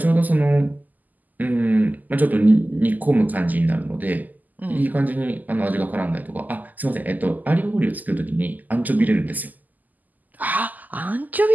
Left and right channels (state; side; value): late; left; 0.082 ms